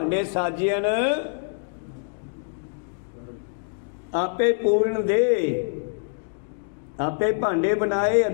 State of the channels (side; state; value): right; silent; digital silence